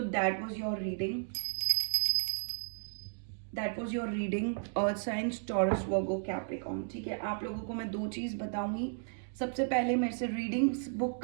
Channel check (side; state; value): left; silent; digital silence